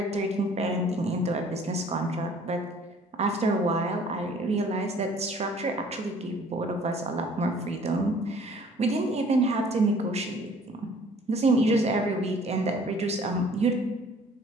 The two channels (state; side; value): normal; both; correlation 0.54